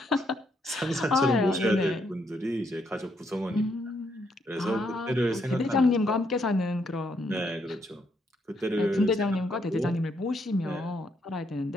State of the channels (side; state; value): both; normal; correlation 0.75